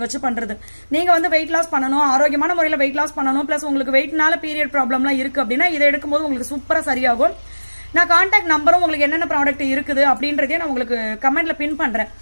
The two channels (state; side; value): inverted; both; correlation -1.00